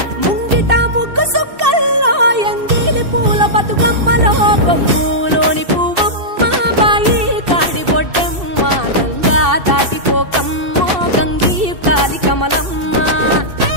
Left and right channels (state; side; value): late; left; 2.6 ms